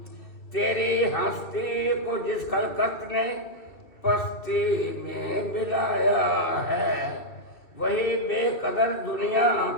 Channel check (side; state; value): right; late; 2.6 ms